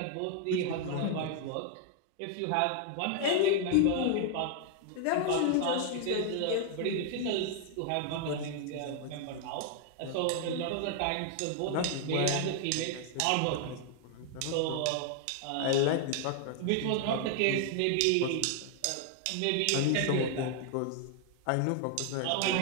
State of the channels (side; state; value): both; different; correlation 0.00